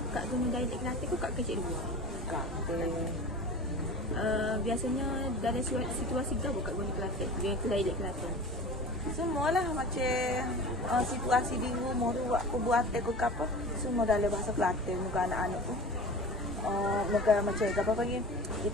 Kak guna dialek Kelantan ke Kak kecik luar? Kelantan. Biasanya dalam situasi gabung Kak guna Kelantan dengan dialek Kelantan? Semualah macam situasi di rumah tu buat perbuatan ke apa. Semua dalam bahasa Kelantan muka anak-anak tu. Negara macam apa panggil,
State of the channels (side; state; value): both; normal; correlation 0.37